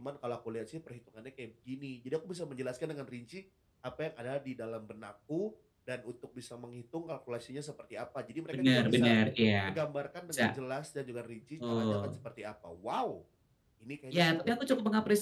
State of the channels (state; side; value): identical; both; correlation 1.00